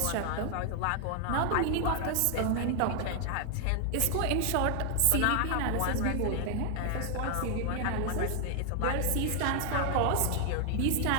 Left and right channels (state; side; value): different; both; correlation 0.00